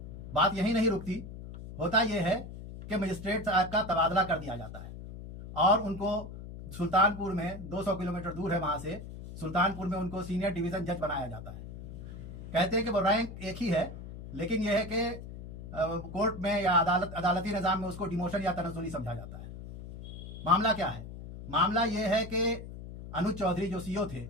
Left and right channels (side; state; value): left; noise; hum, 11 dB below the sound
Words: बात यही नहीं रुकती, होता यह है कि मजिस्ट्रेट साहब का तबादला कर दिया जाता है और उनको सुल्तानपुर में, 200 किलोमीटर दूर है वहाँ से, सुल्तानपुर में उनको सीनियर डिवीज़न जज बनाया जाता है। कहते हैं कि वो रैंक एक ही है, लेकिन यह है कि कोर्ट में या अदालती निज़ाम में उसको डिमोशन या तनज़्ज़ुली समझा जाता है। मामला क्या है? मामला यह है कि अनुज चौधरी जो सीईओ थे